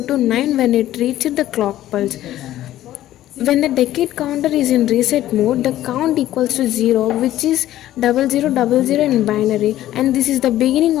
9 when it reaches the clock pulse. When the decade counter is in reset mode, the count equals to 0, which is 0000 in binary, and this is the beginning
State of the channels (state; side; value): quieter; right; 13.7 dB